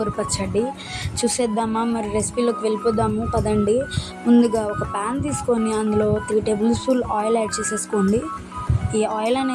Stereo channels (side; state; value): both; identical; correlation 1.00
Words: పచ్చడి చూసేద్దామా? మరి రెసిపీలోకి వెళ్ళిపోదాము పదండి. ముందుగా ఒక ప్యాన్ తీసుకొని అందులో 3 టేబుల్ స్పూన్ ఆయిల్ యాడ్ చేసేసుకోండి. ఈ ఆయిల్